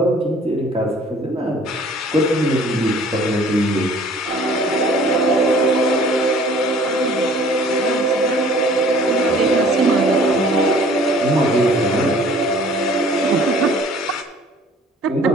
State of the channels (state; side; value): normal; both; correlation 0.52